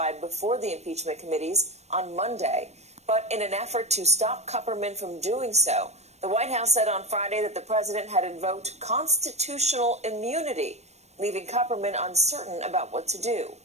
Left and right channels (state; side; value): late; left; 0.32 ms